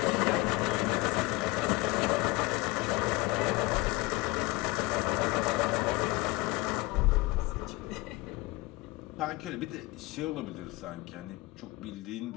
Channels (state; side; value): quieter; right; 21.9 dB